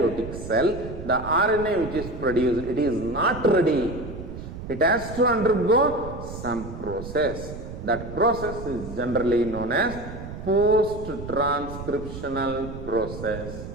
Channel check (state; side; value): noise; right; rumble, 10 dB below the sound